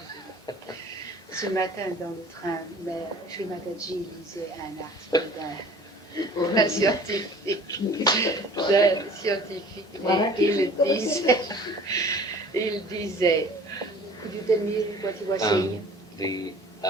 Ce matin dans le train, Sri Mataji lisait un article d'un scientifique. Et il disait, could you tell me what he was saying?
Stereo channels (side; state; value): both; normal; correlation 0.47